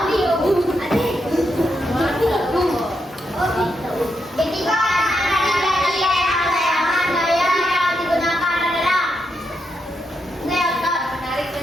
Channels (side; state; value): both; normal; correlation 0.82